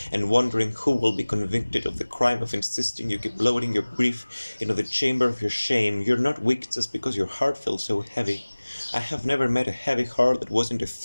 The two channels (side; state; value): both; inverted; correlation -1.00